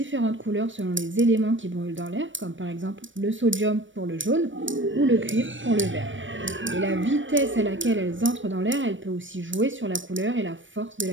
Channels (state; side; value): late; left; 0.56 ms